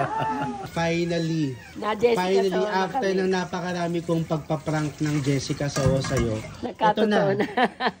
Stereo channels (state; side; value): identical; both; correlation 1.00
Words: Finally, Na Jessica Soho na after kami. ng napakarami kong pagpaprank ng Jessica Soho sa'yo, Nagkatotoo na.